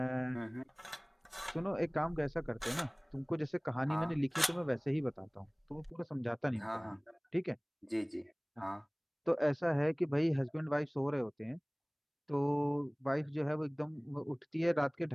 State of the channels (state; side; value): identical; both; correlation 1.00